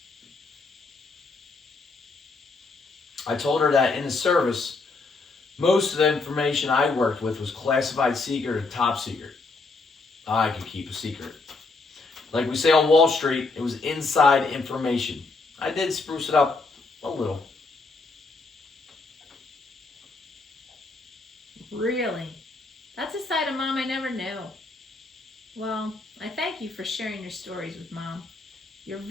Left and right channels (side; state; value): right; quieter; 3.7 dB